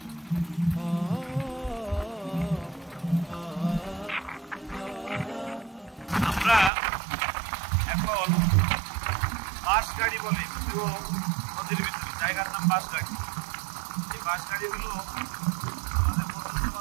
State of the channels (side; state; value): left; drops out; at 6.7 s